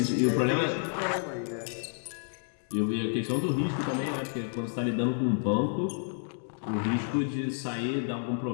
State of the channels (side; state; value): right; silent; digital silence